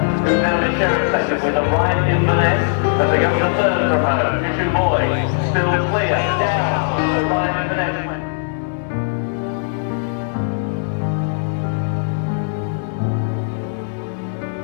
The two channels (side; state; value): right; silent; digital silence